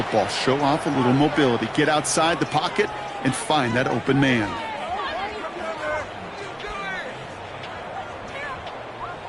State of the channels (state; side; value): identical; both; correlation 1.00